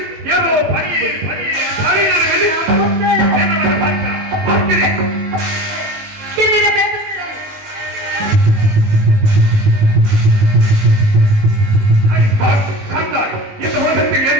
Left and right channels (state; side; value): late; left; 19 ms